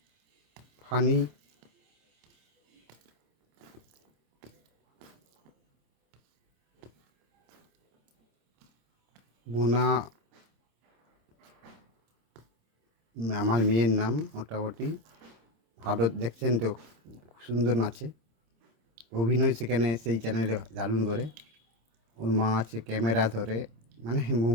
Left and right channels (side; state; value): left; late; 26 ms